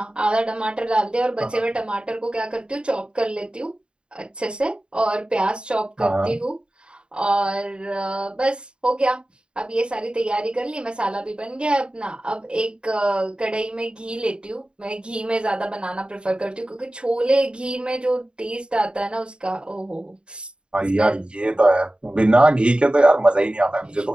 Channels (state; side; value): late; left; 0.053 ms